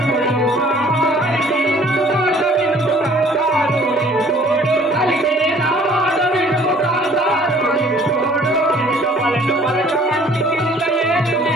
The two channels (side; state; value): both; normal; correlation 0.54